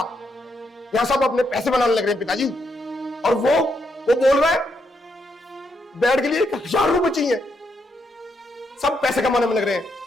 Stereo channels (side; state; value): both; normal; correlation 0.78